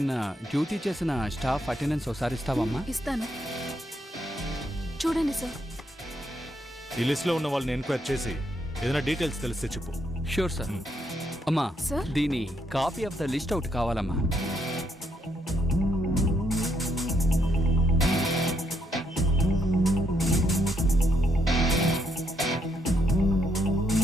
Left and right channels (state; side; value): normal; both; correlation 0.75